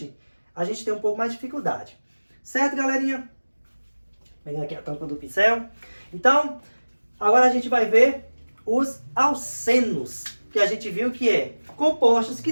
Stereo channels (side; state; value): both; inverted; correlation -1.00